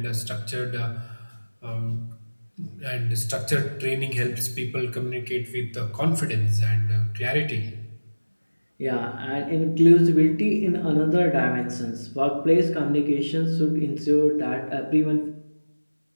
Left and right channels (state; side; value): inverted; both; correlation -1.00